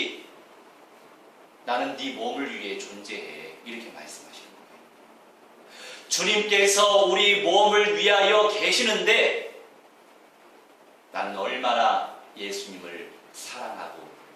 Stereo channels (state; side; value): identical; both; correlation 1.00